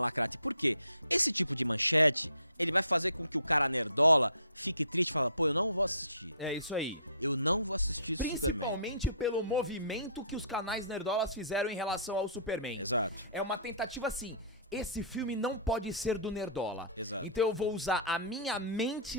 Por quê? Esse tipo de manchete, ele vai fazer com que o cara nerdola fique triste e fala, pô, eu não vou assistir. É isso aí. Eu não vou assistir Principalmente pelo movimento que os canais nerdolas fizeram em relação ao Superman. Exato. É uma tentativa assim, esse filme não pode ser do nerdola. Exato. Então eu vou usar a minha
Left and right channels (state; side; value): inverted; both; correlation -0.50